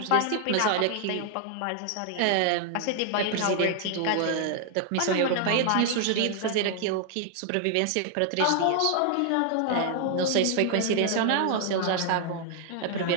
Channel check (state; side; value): different; both; correlation 0.00